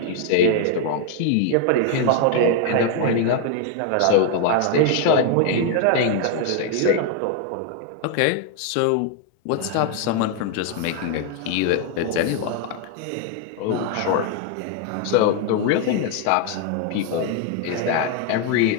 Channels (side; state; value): both; different; correlation 0.00